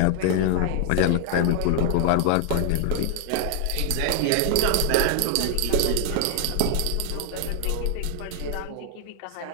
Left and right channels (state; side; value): different; both; correlation 0.00